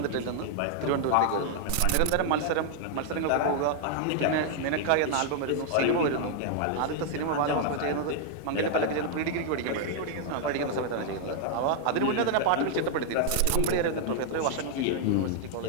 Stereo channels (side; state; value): both; different; correlation -0.01